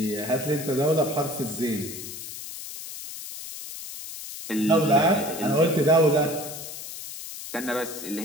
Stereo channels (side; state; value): left; noise; hiss, 10 dB below the sound